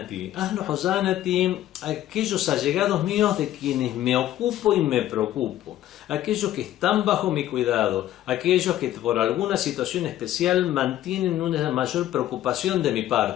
Ahlu huzanati, aquellos allegados míos de quienes me ocupo y me preocupo. Aquellos que están bajo mi cuidado. Aquellos que por alguna situación especial mantienen una mayor preocupación de mi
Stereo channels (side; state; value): right; quieter; 13.0 dB